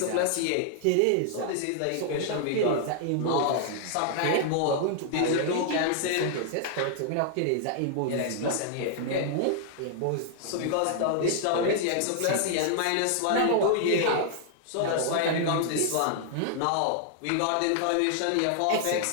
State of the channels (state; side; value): different; both; correlation 0.00